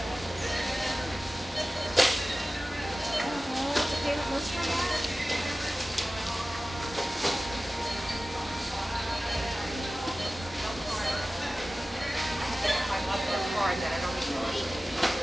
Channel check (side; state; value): both; normal; correlation 0.96